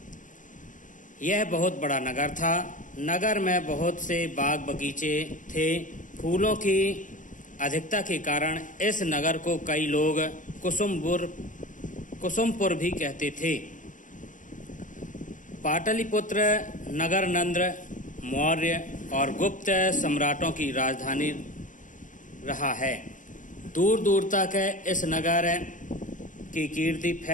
यह बहुत बड़ा नगर था। नगर में बहुत से बाग बगीचे थे। फूलों की अधिकता के कारण इस नगर को कई लोग कुसुमपुर भी कहते थे। पाटलिपुत्र नगर नंद, मौर्य और गुप्त सम्राटों की राजधानी रहा है। दूर दूर तक इस नगर की कीर्ति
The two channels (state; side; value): late; right; 0.37 ms